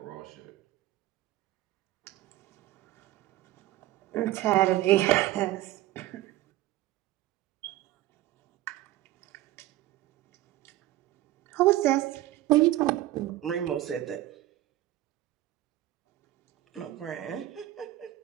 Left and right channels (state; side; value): quieter; left; 15.3 dB